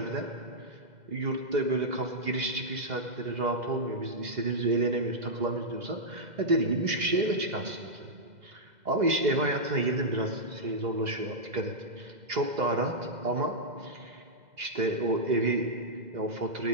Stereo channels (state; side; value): late; left; 2.0 ms